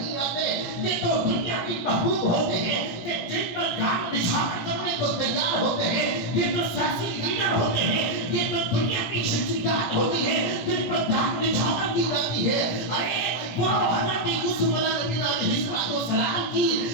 آتے. یہ تو دنیا کی محبوب ہوتے ہیں کہ جن پر جان نشان کرنے کو تیار ہوتے ہیں. یہ تو سیاسی لیڈر ہوتے ہیں، یہ تو دنیا کی شخصیات ہوتی ہے جن پر جان نشان کی جاتی ہے. ارے وہ حضرت یوسف علیہ السلام کی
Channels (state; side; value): late; right; 18 ms